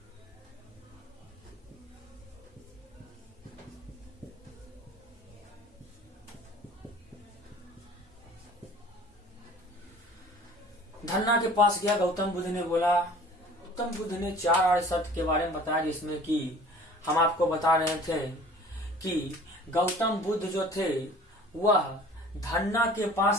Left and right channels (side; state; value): both; normal; correlation 0.47